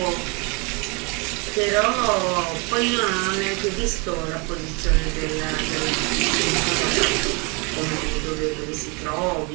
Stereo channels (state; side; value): quieter; left; 31.0 dB